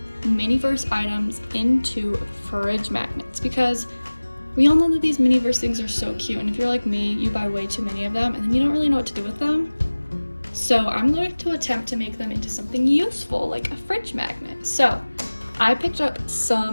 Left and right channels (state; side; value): inverted; both; correlation -1.00